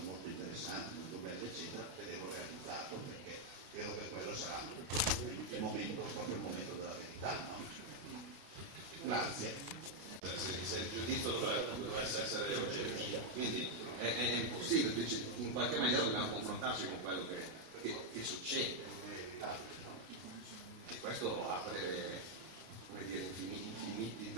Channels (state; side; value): late; left; 33 ms